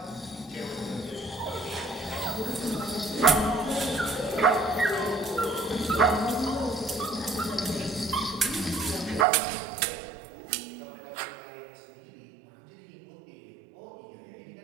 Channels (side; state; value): left; drops out; at 9.2 s